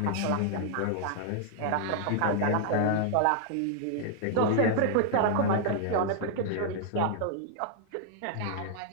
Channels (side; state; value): both; different; correlation -0.01